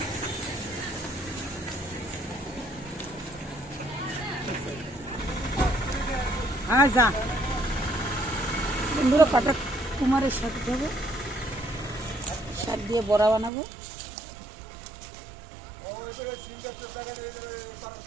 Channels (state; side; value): drops out; left; at 13.5 s